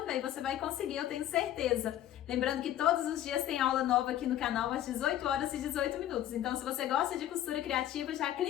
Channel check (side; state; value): right; quieter; 12.2 dB